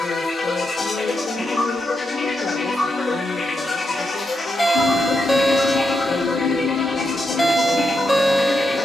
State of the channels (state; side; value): normal; both; correlation 0.84